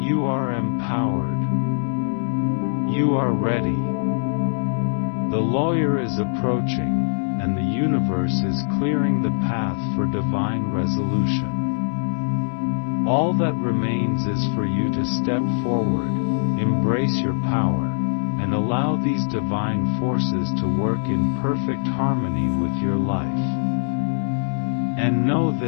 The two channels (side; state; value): right; silent; digital silence